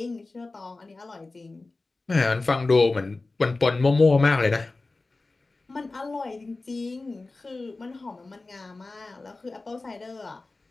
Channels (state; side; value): quieter; right; 3.4 dB